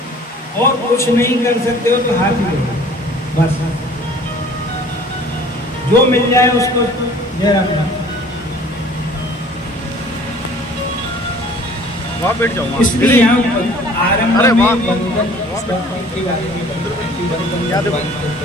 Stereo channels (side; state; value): both; normal; correlation 0.50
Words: और कुछ नहीं कर सकते हो तो हाथ ही बस, जो मिल जाए उसको जय राम। वहाँ बैठ जाऊँ इसलिए यहाँ आरंभ अरे में वाह। वंदन की बात याद है।